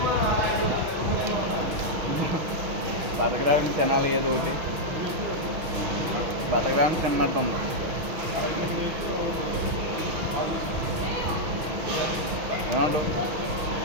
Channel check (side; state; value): left; late; 6.2 ms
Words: బతకడానికి తినాలి ఏదో ఒకటి, బతకడానికి తిన్నట్టు ఉంది. ఏమంటావు?